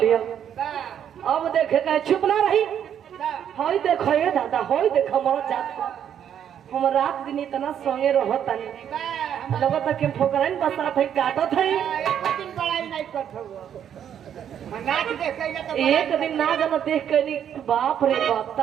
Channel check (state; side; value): quieter; left; 9.3 dB